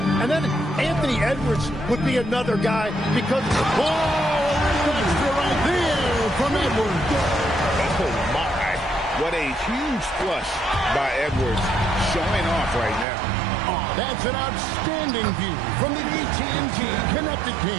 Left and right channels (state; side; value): drops out; left; at 13.1 s